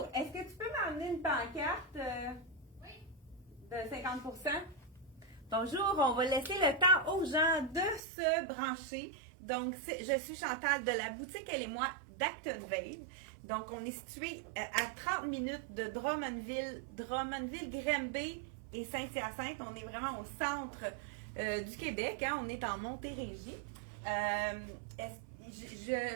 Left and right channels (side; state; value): left; drops out; at 8.0 s